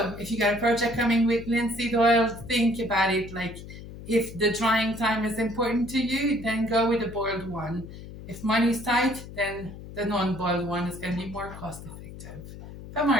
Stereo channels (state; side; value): noise; left; hum, 13 dB below the sound